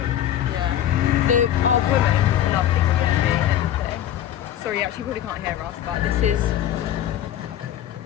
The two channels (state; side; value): quieter; right; 11.3 dB